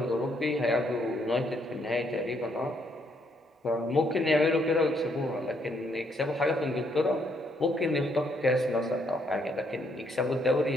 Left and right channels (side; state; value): both; normal; correlation 0.72